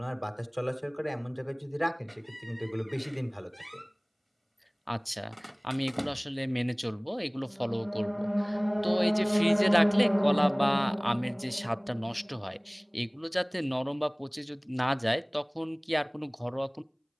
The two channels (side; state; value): both; identical; correlation 1.00